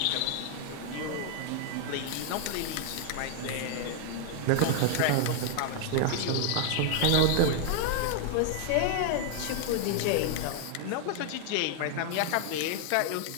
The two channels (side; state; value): both; different; correlation 0.00